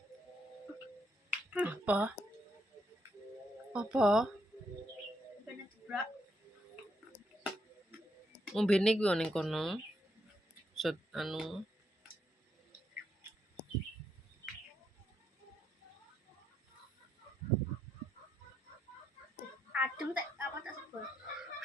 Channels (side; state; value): both; normal; correlation 0.78